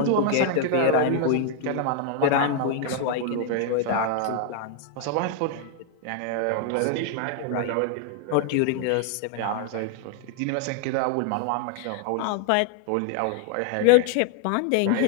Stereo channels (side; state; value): both; different; correlation 0.00